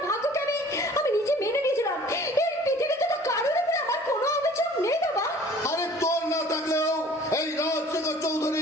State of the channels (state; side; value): normal; both; correlation 0.50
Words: ভাগ্যকে আমি নিজে মেনে নিয়েছিলাম। এই পৃথিবীতে তো কারোর উপরে আমার কোনো অভিযোগ নেই বাবা। আরে তোর না থাকলেও এই রাজশেখর